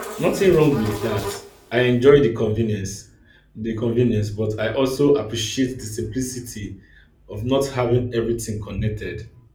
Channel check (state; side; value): identical; both; correlation 1.00